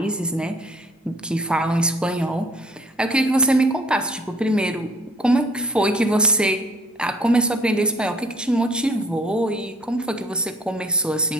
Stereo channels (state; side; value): normal; both; correlation 0.56